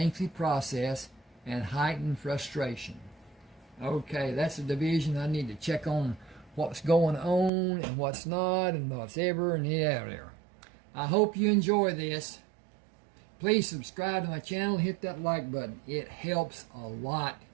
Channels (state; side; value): drops out; left; at 7.5 s